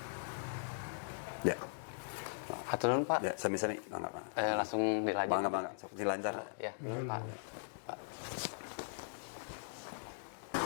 Ya, Hatur nuhun Pak. ya, sami-sami, mangga. Langsung dilanjut. Mangga, sok dilancar. Ya, Pak.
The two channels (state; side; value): silent; right; digital silence